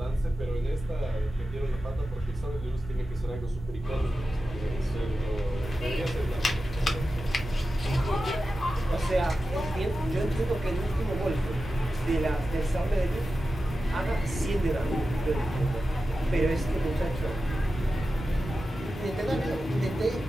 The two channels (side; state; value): both; normal; correlation 0.93